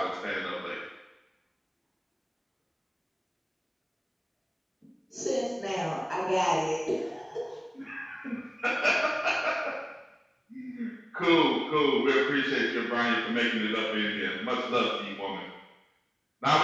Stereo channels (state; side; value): identical; both; correlation 1.00